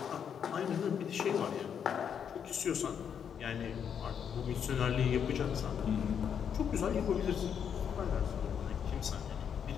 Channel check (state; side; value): quieter; right; 7.9 dB